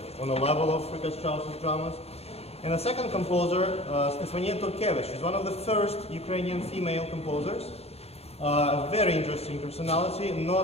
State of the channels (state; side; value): late; right; 0.30 ms